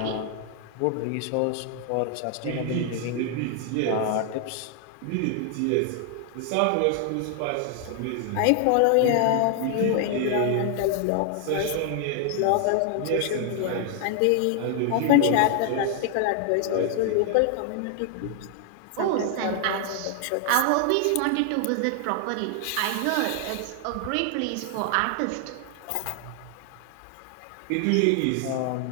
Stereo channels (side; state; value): both; different; correlation 0.00